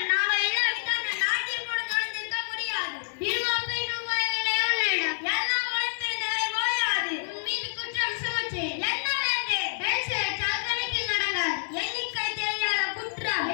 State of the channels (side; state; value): right; silent; digital silence